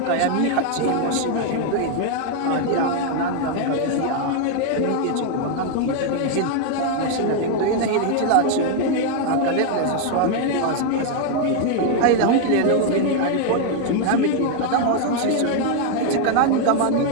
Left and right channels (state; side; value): different; both; correlation 0.01